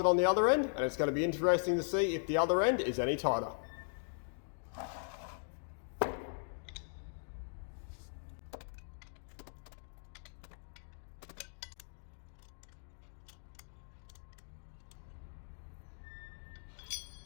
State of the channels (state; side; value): silent; right; digital silence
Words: on the other end, and it's going to be interesting to see if the other end is any tighter.